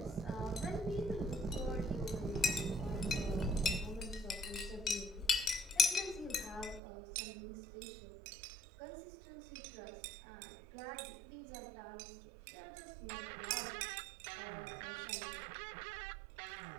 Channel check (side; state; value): left; drops out; at 6.8 s